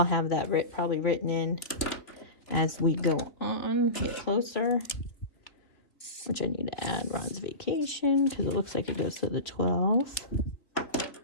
have that probably written in as we go on, get closer, which I need to add Ron's vacation because it looks like it goes to the 12th.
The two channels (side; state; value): right; late; 3.1 ms